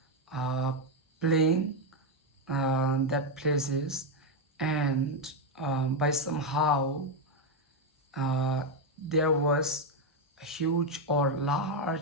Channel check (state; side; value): normal; both; correlation 0.04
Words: playing that places, and by somehow there was a huge or